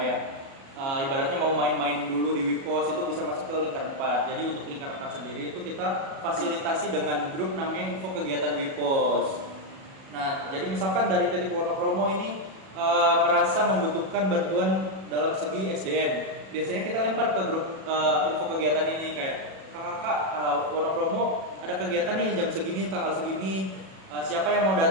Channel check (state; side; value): late; left; 37 ms